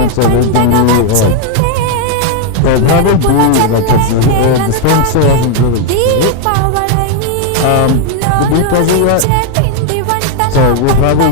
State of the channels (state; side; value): different; both; correlation 0.00